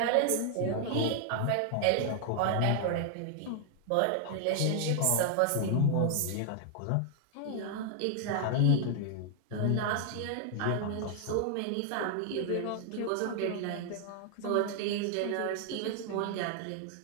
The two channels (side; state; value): both; different; correlation 0.00